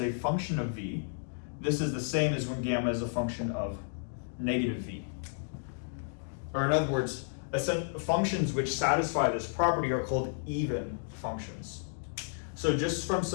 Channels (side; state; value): right; silent; digital silence